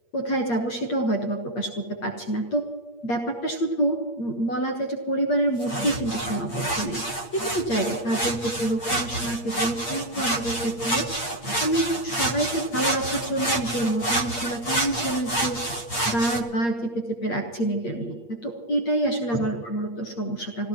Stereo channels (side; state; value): right; late; 8.6 ms